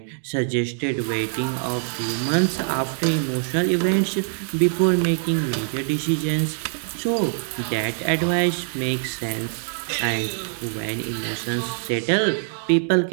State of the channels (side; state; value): left; silent; digital silence